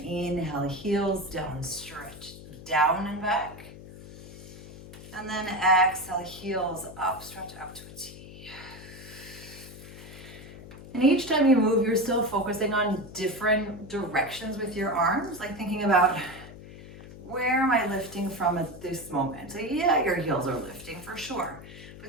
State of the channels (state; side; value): noise; left; hum, 15 dB below the sound